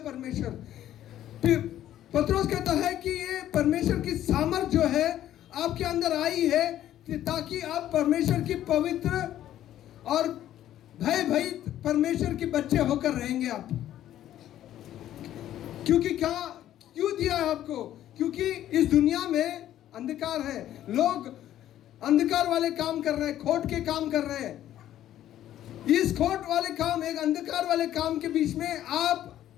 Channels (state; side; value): quieter; right; 12.3 dB